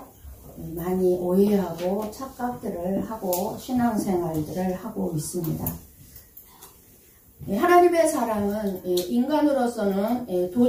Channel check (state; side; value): identical; both; correlation 1.00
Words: 많이 오해하고 착각들을 하고 신앙생활들을 하고 있습니다. 하나님의 사랑은 인간으로서는